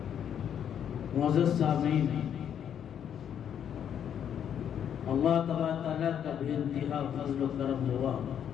معزز سامعین، اللہ تبارک تعالیٰ کا بے انتہا فضل و کرم ہوا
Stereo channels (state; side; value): quieter; right; 9.0 dB